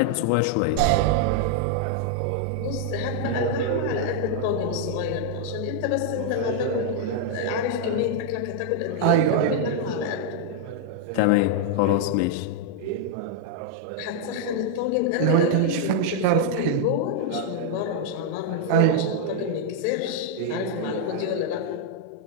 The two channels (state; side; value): different; both; correlation -0.01